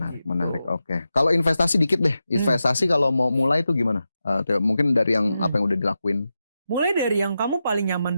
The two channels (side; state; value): both; inverted; correlation -0.90